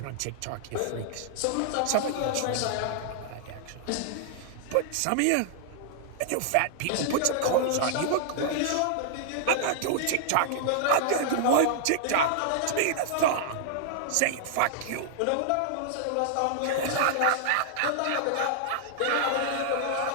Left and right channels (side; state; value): both; different; correlation -0.01